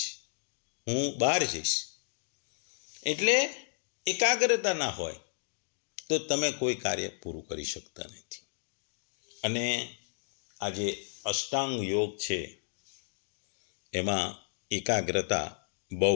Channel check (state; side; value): silent; right; digital silence